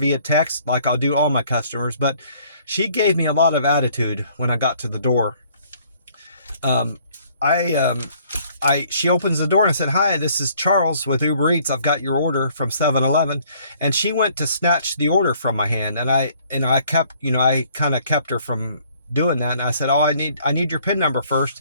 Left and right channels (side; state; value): both; inverted; correlation -0.61